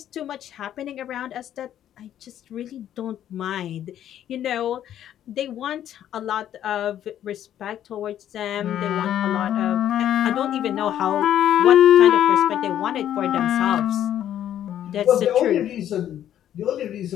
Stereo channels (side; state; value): right; quieter; 11.0 dB